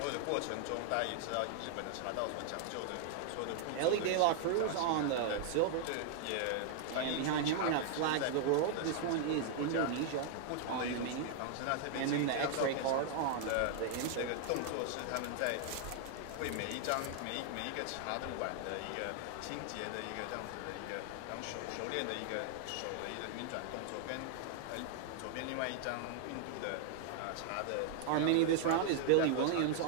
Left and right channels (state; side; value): different; both; correlation 0.00